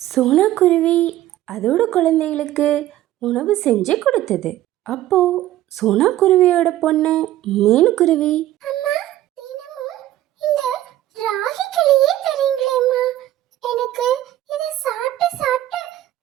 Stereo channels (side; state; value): left; quieter; 14.0 dB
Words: சோனா குருவி அதோட குழந்தைகளுக்கு உணவு செஞ்சு கொடுத்தது. அப்போ சோனா குருவியோட பொண்ணு மீனுக்குருவி, அம்மா, தினமும் இந்த ராகி களியே தரீங்களேம்மா. எனக்கு இதை சாப்பிட்டு சாப்பிட்டு